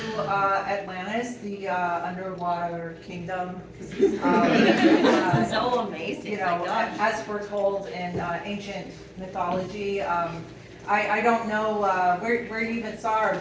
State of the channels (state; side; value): identical; both; correlation 1.00